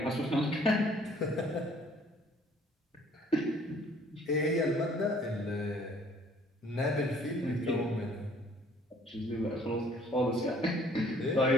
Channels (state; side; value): normal; both; correlation 0.58